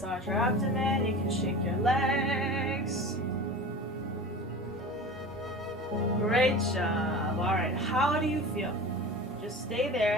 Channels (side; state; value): both; normal; correlation 0.34